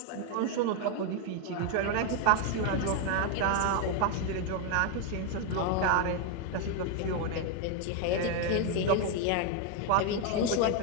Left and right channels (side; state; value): both; different; correlation 0.01